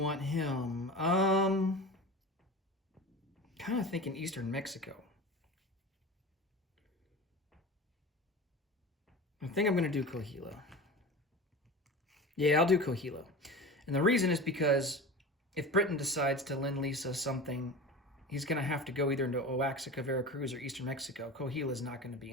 him? Kind of thinking eastern Mexico. I think I'm going to do Coahuila. Yeah, I'll do Coahuila. And the reason is because if Britain decides to lend lease us something, he's going to have to go either into Oaxaca, Veracruz, or eastern Mexico. Coahuila is not going to be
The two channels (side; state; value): both; normal; correlation 0.32